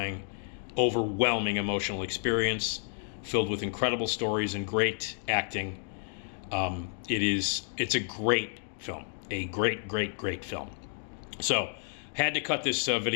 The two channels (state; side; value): silent; right; digital silence